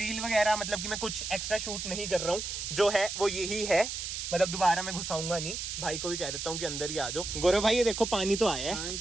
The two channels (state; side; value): noise; right; hiss, 5 dB below the sound